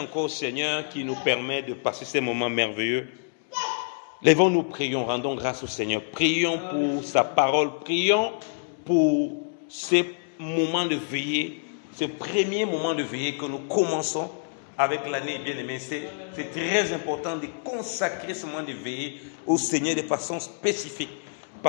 au Seigneur qui nous permet de passer ces moments merveilleux. Lèvons-nous, prions, rendons grâce au Seigneur. Prions pour sa parole, prions pour ces moments de veillée, ce premier moment de veillée que nous commençons avec l'année, bien aimé. C'est très important de consacrer ce moment de veillée au Seigneur de façon spécifique.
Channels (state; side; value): silent; right; 60 dB below the other